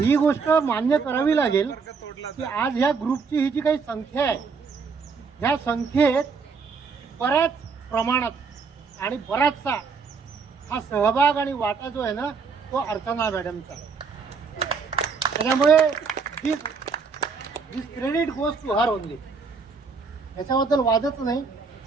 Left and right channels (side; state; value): left; quieter; 5.1 dB